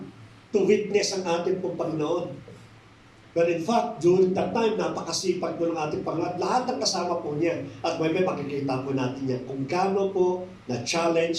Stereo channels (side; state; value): both; identical; correlation 1.00